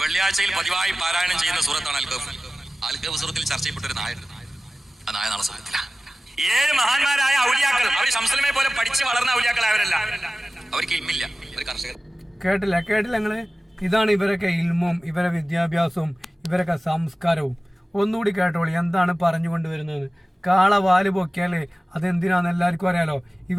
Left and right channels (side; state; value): both; normal; correlation 0.96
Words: വെള്ളിയാഴ്ചയിൽ പതിവായി പാരായണം ചെയ്യുന്ന സൂറത്താണ് അൽ-കഹ്ഫ്. അൽ-കഹ്ഫ് സൂറത്തിൽ ചർച്ച ചെയ്യപ്പെട്ട ഒരു നായ, ആ നായ നാളെ സ്വർഗ്ഗത്തിലാണ്. 7 മഹാന്മാരായ ഔലിയാക്കൾ, അവർ ശംസുലമയെ പോലെ പഠിച്ച് വളർന്ന ഔലിയാക്കളായവരല്ല. അവർക്ക് ഇൽമില്ല, അവർ കർഷകർ. കേട്ടില്ല നിങ്ങള്? ഇതാണ് ഇവരൊക്കെ ഇൽമും, ഇവരെ വിദ്യാഭ്യാസവും, ഇവരൊക്കെ സംസ്കാരവും. ഒന്നുകൂടി കേട്ടോളി എന്താണ് പറഞ്ഞുകൊണ്ടുവരുന്നത്. കാള വാല് പൊക്കിയാല് അതെന്തിനാന്ന് എല്ലാവർക്കും അറിയാലോ.